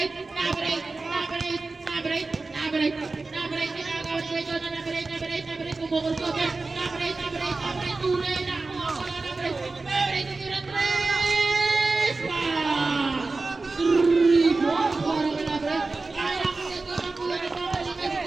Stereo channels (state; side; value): quieter; left; 3.6 dB